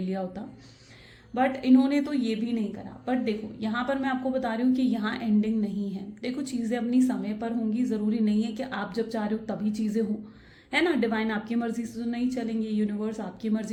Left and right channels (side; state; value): both; identical; correlation 1.00